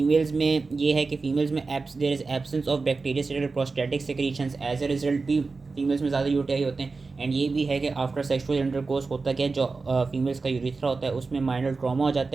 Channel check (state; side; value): quieter; left; 4.1 dB